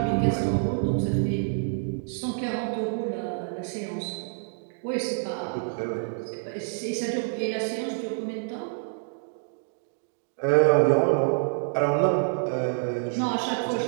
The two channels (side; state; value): left; silent; digital silence